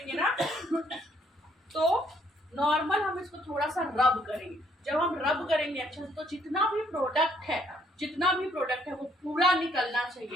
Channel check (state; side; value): normal; both; correlation 0.67